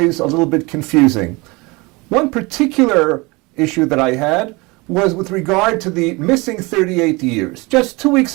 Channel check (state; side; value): quieter; left; 25.3 dB